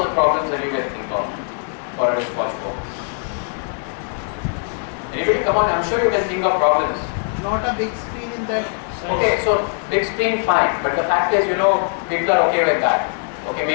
the problems that you can think of for a wristwatch phone. Anybody? Come on, I'm sure you can think of problems. Not a big screen in that. Okay, so big screen, fine. But the fact is, people are okay with that. Okay,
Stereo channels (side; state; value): right; silent; 55 dB below the other